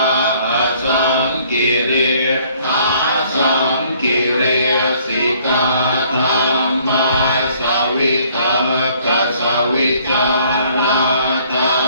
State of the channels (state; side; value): inverted; both; correlation -0.60